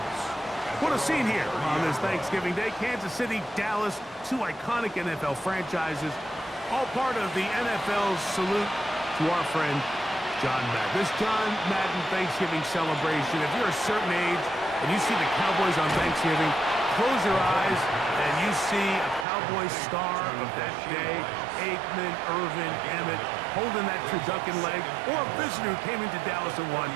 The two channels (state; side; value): drops out; left; at 19.2 s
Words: What a scene here on this Thanksgiving Day. Kansas City, Dallas, 2 iconic NFL franchises, all part of the NFL's salute to our friend John Madden. This John Madden Thanksgiving celebration, if you're a certain age and you see the Cowboys on Thanksgiving, close your eyes and you see a Cowboys star of that day, Aikman, Irvin, Emmett, holding that turducken leg, or a visitor who came into Dallas and won,